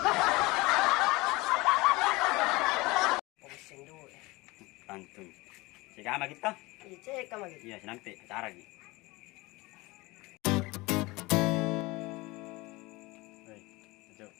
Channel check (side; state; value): right; quieter; 22.6 dB